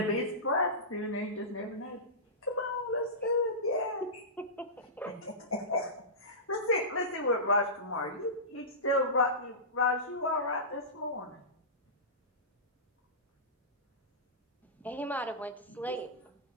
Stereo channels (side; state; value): both; normal; correlation -0.19